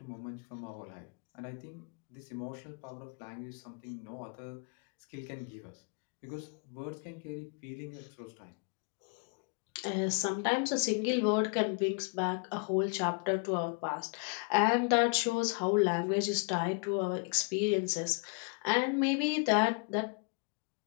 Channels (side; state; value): right; quieter; 35.9 dB